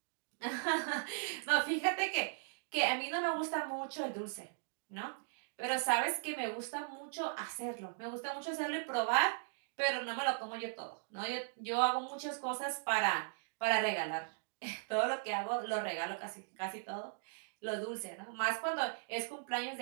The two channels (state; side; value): silent; left; digital silence